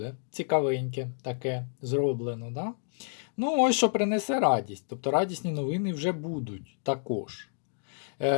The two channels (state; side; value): silent; right; digital silence